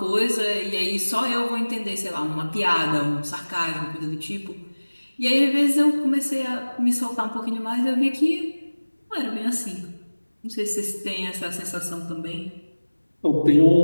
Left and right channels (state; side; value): inverted; both; correlation -1.00